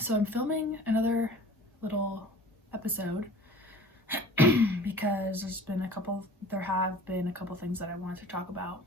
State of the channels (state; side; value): normal; both; correlation 0.45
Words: I'm filming another little episode because there have been a couple things that I wanted to talk about